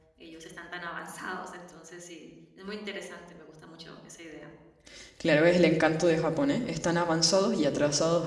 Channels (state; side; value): identical; both; correlation 1.00